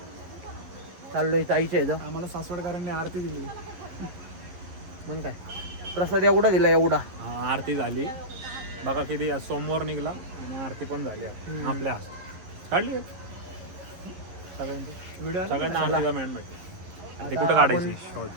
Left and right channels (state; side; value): late; left; 11 ms